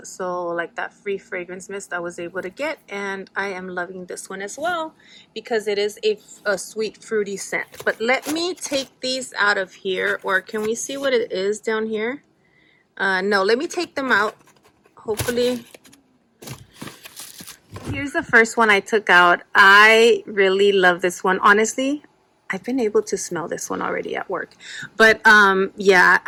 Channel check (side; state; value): both; identical; correlation 1.00